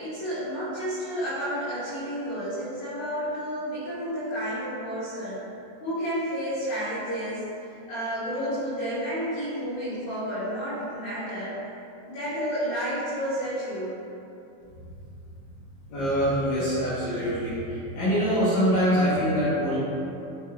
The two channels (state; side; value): late; right; 22 ms